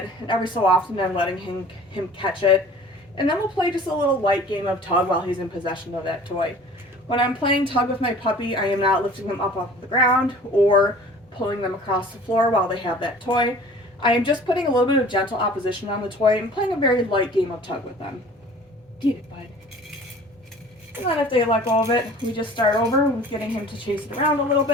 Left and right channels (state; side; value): normal; both; correlation 0.46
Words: and every so often I'm letting him catch it. And then we'll play just a little light game of tug while he's in possession of that toy. When I'm playing tug with my puppy, I am not lifting them up off the ground or pulling them across the floor while they have that toy. I am just putting a little bit of gentle opposition on the toy and playing a very light game of tug with them. Get it, bud. And then if they let go of it, we just start over with getting him to chase it around a little